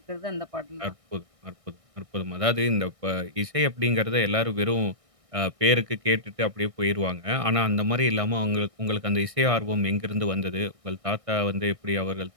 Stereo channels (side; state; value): left; late; 1.6 ms